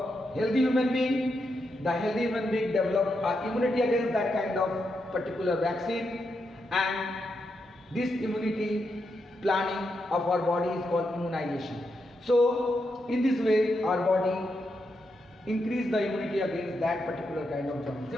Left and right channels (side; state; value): both; normal; correlation 0.84